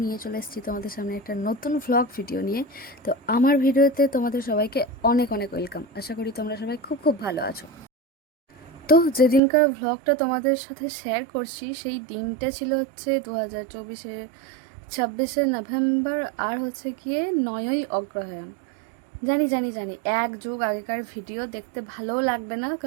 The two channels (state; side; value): drops out; left; at 9.4 s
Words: নিয়ে চলে এসেছি তোমাদের সামনে একটা নতুন ভ্লগ ভিডিও নিয়ে। তো আমার ভিডিওতে তোমাদের সবাইকে অনেক অনেক ওয়েলকাম। আশা করি তোমরা সবাই খুব খুব ভালো আছো। তো যেদিনকার ভ্লগটা তোমাদের সাথে শেয়ার করছি সেই দিনটা ছিল হচ্ছে 2024-এর 26শে নভেম্বর, আর হচ্ছে গিয়ে 9ই অগ্রহায়ণ। জানি জানি জানি এক যুগ আগেকার ভিডিও দেখতে ভালোও লাগবে না,